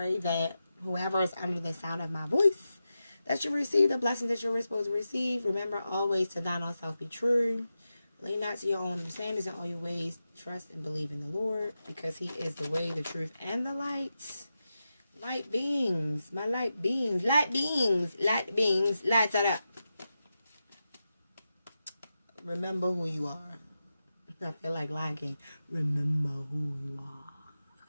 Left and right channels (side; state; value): both; inverted; correlation -0.91